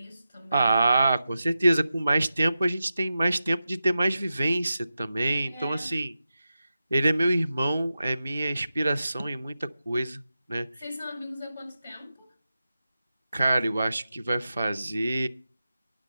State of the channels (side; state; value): both; inverted; correlation -0.91